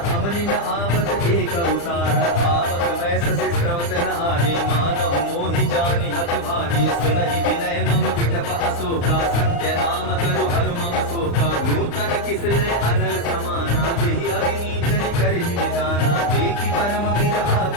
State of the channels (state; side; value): late; right; 35 ms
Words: अवनि न आवत एक उतारा पावक मैं ससि स्रवत न आगे मानहु मोहि जानि हत भागे सुनहि विनय मम विटप अशोका सत्य नाम करु हरु मम शोका नूतन किसले अनल समाना देहि अग्नि जनि करहि निदाना देखि परम विरहा